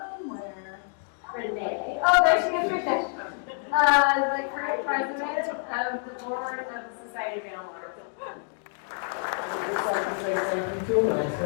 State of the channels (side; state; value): right; silent; 60 dB below the other